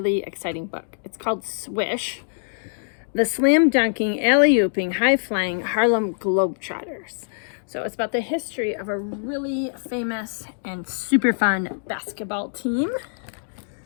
exciting book. It's called Swish, the slam dunking, alley-ooping, high-flying Harlem Globetrotters. So it's about the history of a really famous and super fun basketball team.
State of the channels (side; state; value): right; silent; digital silence